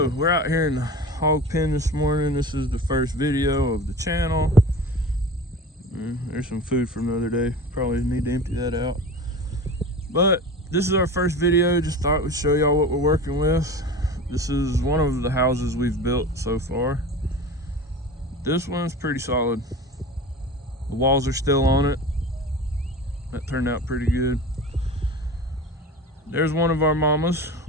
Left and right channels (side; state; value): both; normal; correlation 0.34